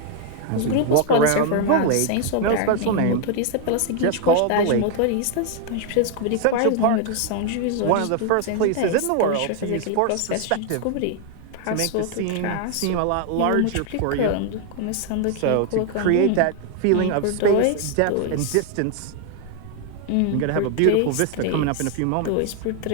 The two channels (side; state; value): both; different; correlation 0.00